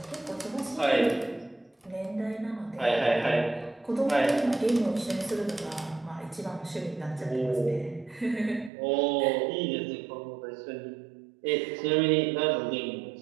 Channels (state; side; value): drops out; left; at 8.7 s